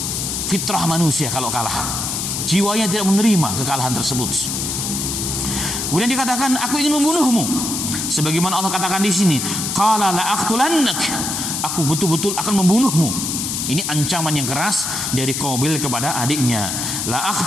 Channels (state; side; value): noise; left; hiss, 2 dB below the sound